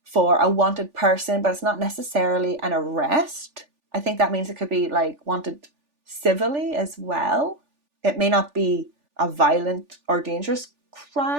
for a wanted person, but it's not necessarily an arrest. I think that means it could be wanted civilly as well. It may not be a violent or dangerous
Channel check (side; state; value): left; late; 3.4 ms